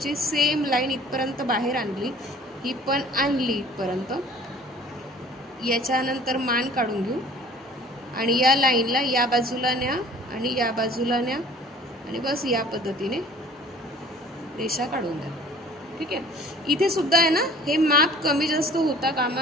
सेम लाईन इथपर्यंत बाहेर आणली, ही पण आणली इथपर्यंत। याच्यानंतर मान काढून घेऊ आणि या लाईनला या बाजूला न्या आणि या बाजूला न्या आणि बस या पद्धतीने रेषा काढून द्या, ठीक आहे। इथे सुद्धा आहे ना, हे माप कमी जास्त होता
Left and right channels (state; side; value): normal; both; correlation 0.49